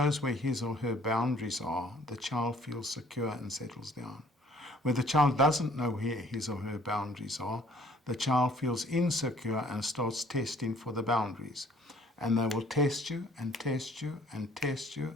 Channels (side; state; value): both; normal; correlation 0.57